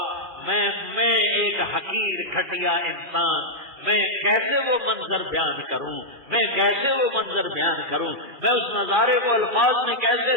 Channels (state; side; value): late; left; 2.4 ms